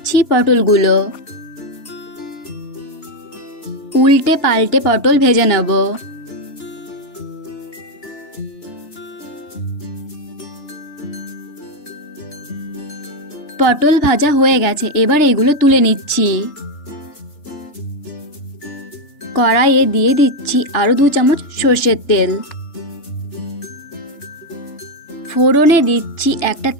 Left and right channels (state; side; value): late; right; 3.4 ms